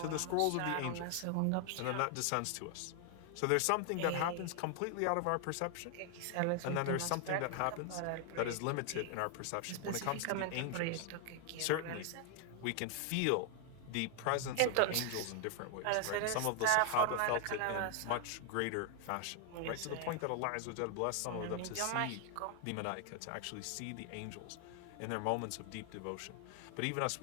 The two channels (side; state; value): both; different; correlation 0.00